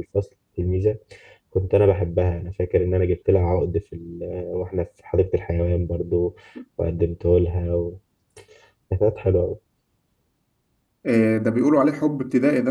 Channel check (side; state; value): both; identical; correlation 1.00